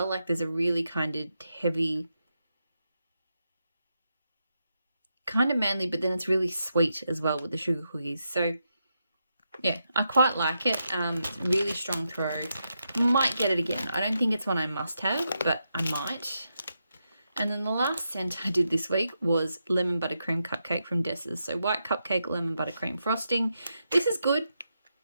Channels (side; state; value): both; inverted; correlation -0.85